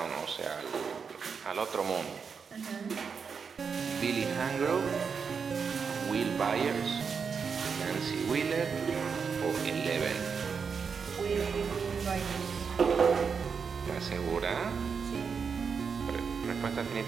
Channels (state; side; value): quieter; left; 5.9 dB